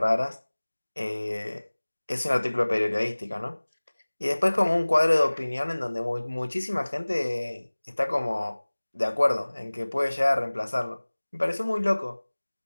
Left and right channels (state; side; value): inverted; both; correlation -1.00